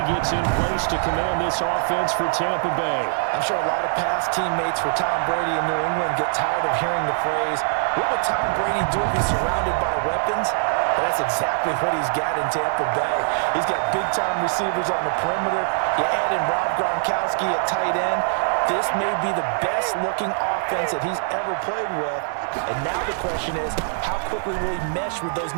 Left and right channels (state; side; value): silent; left; digital silence